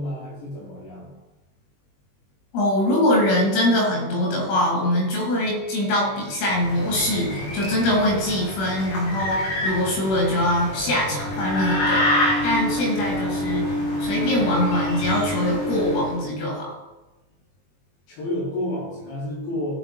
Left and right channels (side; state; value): right; late; 21 ms